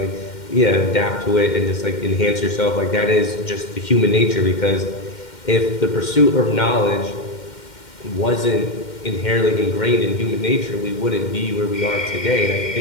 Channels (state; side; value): late; right; 2.1 ms